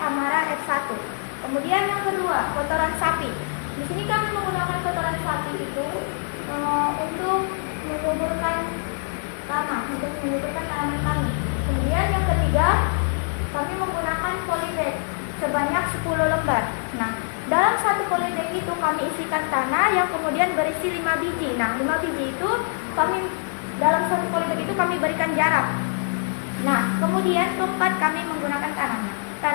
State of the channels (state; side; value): silent; right; digital silence